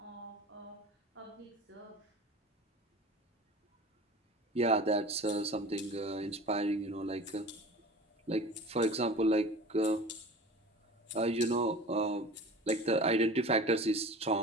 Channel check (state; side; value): normal; both; correlation 0.38